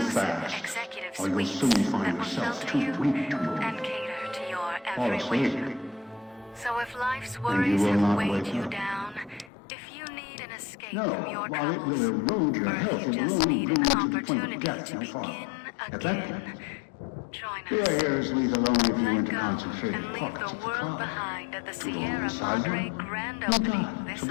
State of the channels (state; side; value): drops out; right; at 9.5 s